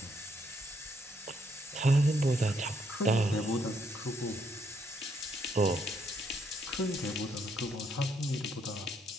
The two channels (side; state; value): both; normal; correlation 0.73